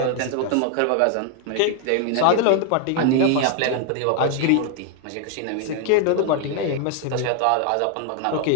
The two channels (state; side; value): different; both; correlation 0.00